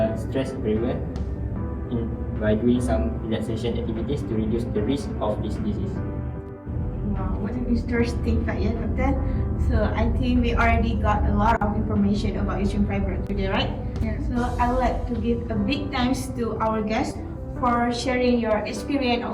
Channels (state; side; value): identical; both; correlation 1.00